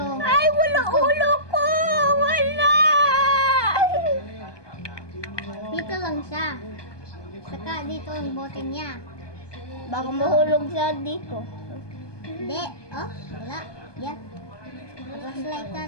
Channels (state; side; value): late; right; 1.2 ms